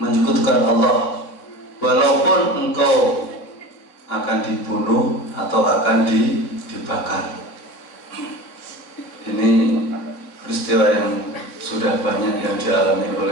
menyekutukan Allah walaupun engkau akan dibunuh atau akan dibakar. Ini peristiwa yang sudah banyak yang dialami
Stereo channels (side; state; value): right; late; 3.5 ms